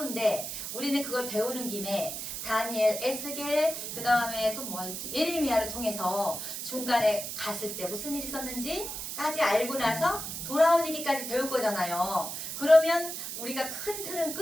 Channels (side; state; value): right; noise; hiss, 6 dB below the sound